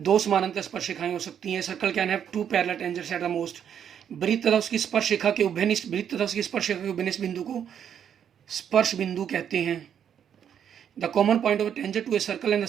समानांतर स्पर्शरेखाएं हो सकती हैं। Circle can have 2 parallel tangents at the most. वृत्त तथा उसकी स्पर्शरेखा के उभयनिष्ठ वृत्त तथा उसकी स्पर्शरेखा के उभयनिष्ठ बिंदु को स्पर्श बिंदु कहते हैं। The common point of tangent to a circle and the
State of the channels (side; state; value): left; quieter; 8.7 dB